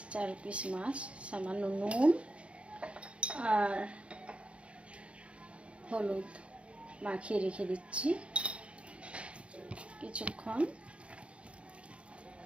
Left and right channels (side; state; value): left; late; 0.060 ms